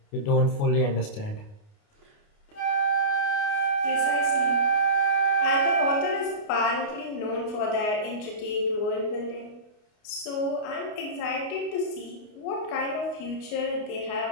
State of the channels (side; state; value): right; late; 29 ms